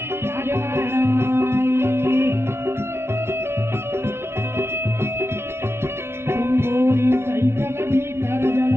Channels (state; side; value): late; left; 0.12 ms